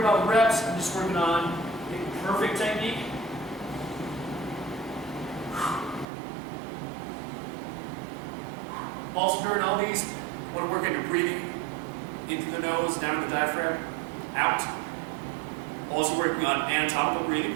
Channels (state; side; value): drops out; left; at 6.1 s